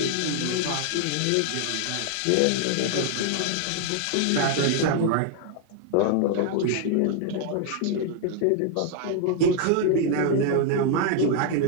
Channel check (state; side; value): different; both; correlation 0.00